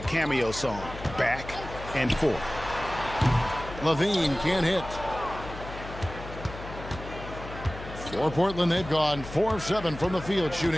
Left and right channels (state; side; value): noise; left; hum, 12 dB below the sound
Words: cameo song, Back and Forth. Levine can't hit. For Portland, they've gone 4 of 7 from the field,